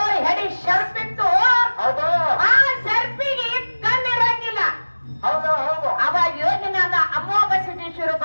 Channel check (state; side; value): inverted; both; correlation -1.00